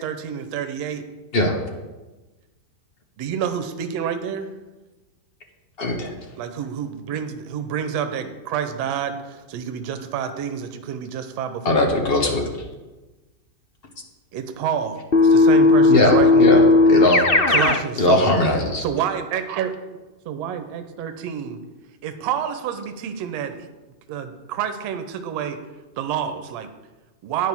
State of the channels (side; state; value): right; late; 2.8 ms